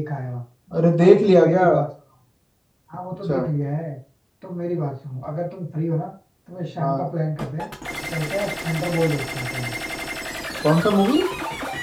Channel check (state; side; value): identical; both; correlation 1.00